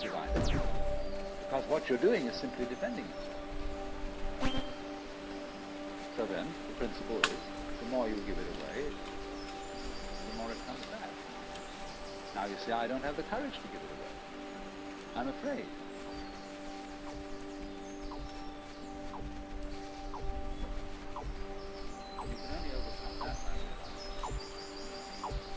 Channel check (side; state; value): both; identical; correlation 1.00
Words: divine energy. Because what you're doing is simply defending yourself. So then, the principle is, the more you give it away, the more it comes back. Now you say, I don't have the courage to give it away. I'm afraid.